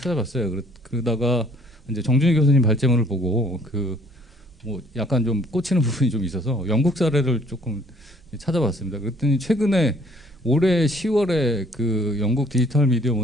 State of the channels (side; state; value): both; normal; correlation 0.60